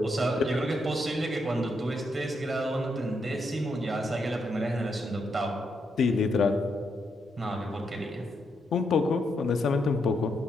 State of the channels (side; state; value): both; normal; correlation 0.80